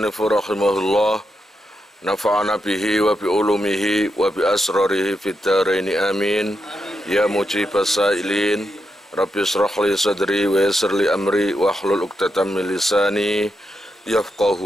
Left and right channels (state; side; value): normal; both; correlation 0.85